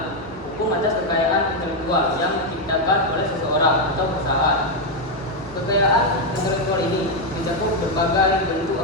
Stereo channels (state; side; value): normal; both; correlation 0.03